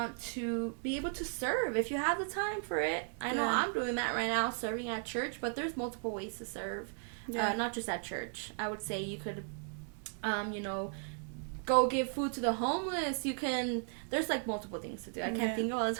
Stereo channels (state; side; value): silent; left; 54 dB below the other